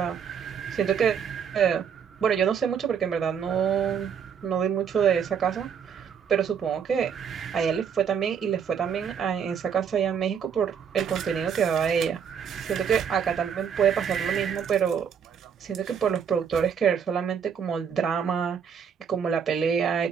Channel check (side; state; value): left; quieter; 7.4 dB